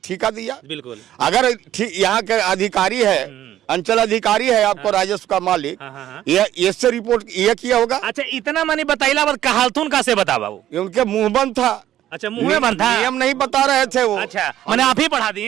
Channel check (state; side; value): quieter; left; 12.5 dB